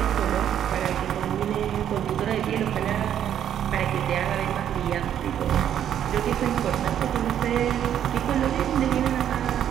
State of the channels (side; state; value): left; quieter; 10.0 dB